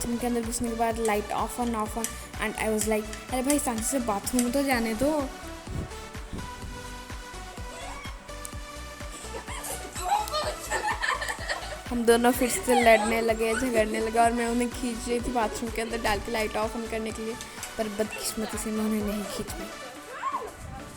के अंदर घुसने के बाद light of on and I was like अरे भाई शांति से बाथरूम तो जाने दो। हम दोनों फिर से लड़ने लगे झगड़ने लगे और मैं उन्हें खींच रही थी बाथरूम के अंदर डाल के लाइट ऑफ ऑन करने के लिए, पर बदकिस्मती से मैं उन्हें नहीं खींच पाई।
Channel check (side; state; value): both; identical; correlation 1.00